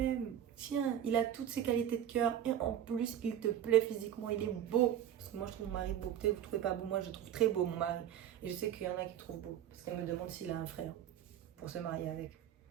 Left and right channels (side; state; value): left; quieter; 10.7 dB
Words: Tiens, il a toutes ses qualités de cœur et en plus il te plaît physiquement, il est beau. Parce que moi je trouve mon mari beau, peut-être vous ne trouvez pas beau, moi je trouve très beau mon mari. Et je sais qu'il y en a qui trouvent beau. Parce qu'elle me demande s'il a un frère pour se marier avec.